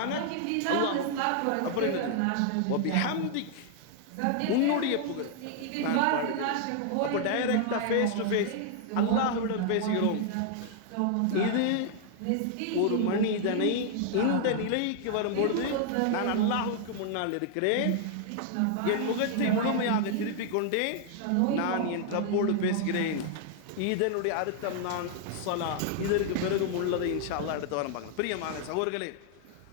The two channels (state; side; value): different; both; correlation 0.00